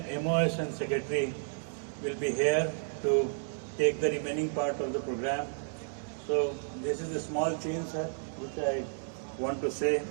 and Secretary will be here to take the remaining part of the program. So this is a small change, sir, which I want to say.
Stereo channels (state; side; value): silent; left; digital silence